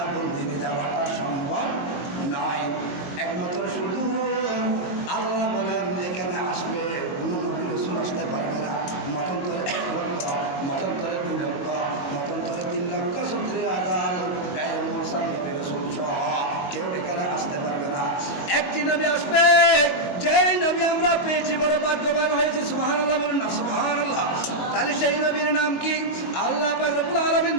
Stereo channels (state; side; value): late; right; 22 ms